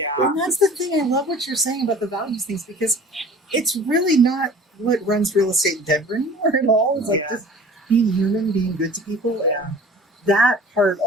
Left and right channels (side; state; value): both; normal; correlation 0.45